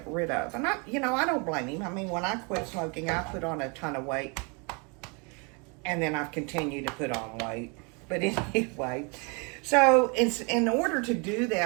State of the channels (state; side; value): quieter; left; 32.8 dB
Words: rid of. And I don't blame him. I mean, when I quit smoking, I put on a ton of weight. And then I've continued to put on weight. But anyway, so in order to do